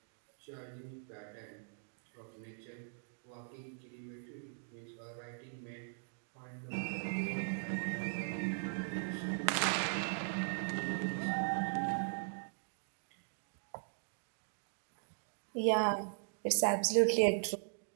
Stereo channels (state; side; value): silent; left; digital silence